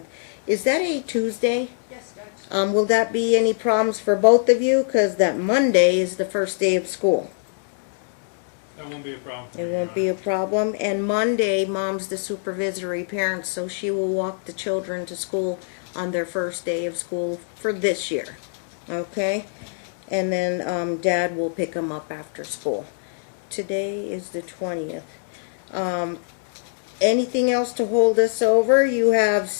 Is that a Tuesday? Yes, Judge. Will that be any problems for both of you? Because that Monday is the first day of school. That won't be a problem. It won't be a problem. And Monday, Mom's the supervisory parent, so she will walk the children to school on their first day of school for this year. Okay? And then Dad will pick them up after school. today is the 20th. Anything else to hold us over? You have,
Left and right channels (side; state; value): right; silent; digital silence